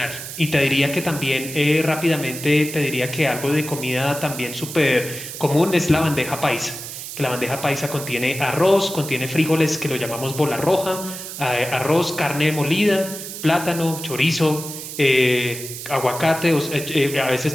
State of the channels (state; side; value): noise; right; hiss, 9 dB below the sound